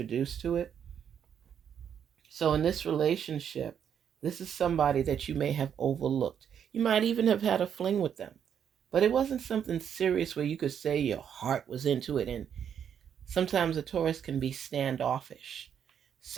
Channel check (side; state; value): left; quieter; 8.4 dB